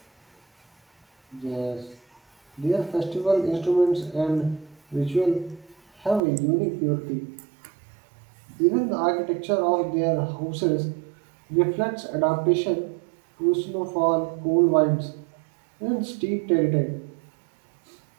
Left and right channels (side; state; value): left; drops out; at 6.2 s